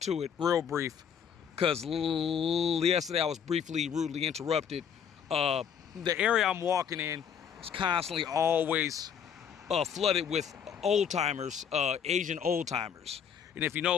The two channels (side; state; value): right; quieter; 7.8 dB